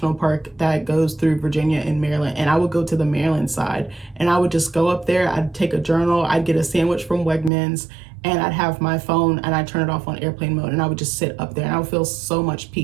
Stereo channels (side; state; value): left; drops out; at 7.5 s